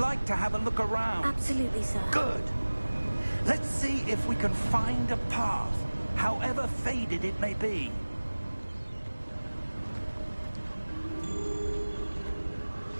to have a look around. Absolutely, sir. Good. Let's see if we can find a path, however faded it may be.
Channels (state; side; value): inverted; both; correlation -1.00